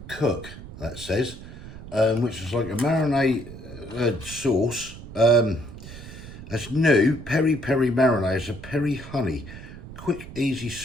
Cook, that says, which is like a marinade sauce. That's new, peri-peri marinade. It's a Peri-Honey, quick, easy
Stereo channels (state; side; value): noise; right; rumble, 14 dB below the sound